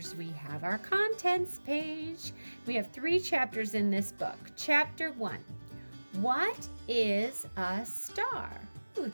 we have our contents page. We have 3 chapters in this book. Chapter 1, what is a star? Ooh,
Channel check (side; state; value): both; inverted; correlation -1.00